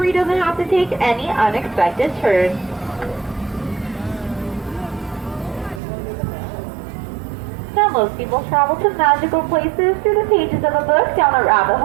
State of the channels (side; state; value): left; drops out; at 5.8 s